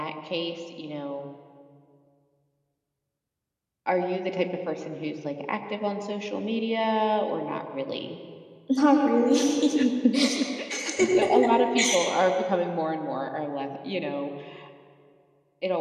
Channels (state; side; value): identical; both; correlation 1.00